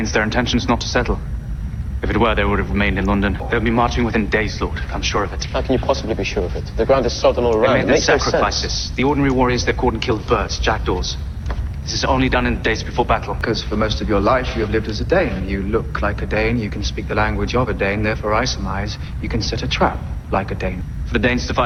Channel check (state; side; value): identical; both; correlation 1.00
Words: Their intention's not to settle. If it were, they would have remained in London. They'll be marching within days, Lord. I'm sure of it. How can you possibly be sure of it? The ground is sodden all They around. made It their makes no sacrifices. sense. The ordinary warriors they've caught and killed birds, jackdaws. This is only done in the days before battle. Because for most of your life you have lived as a Dane. You look like a Dane, you can speak the language of a Dane, therefore I surmise you can set a trap like a Dane. For the Danes to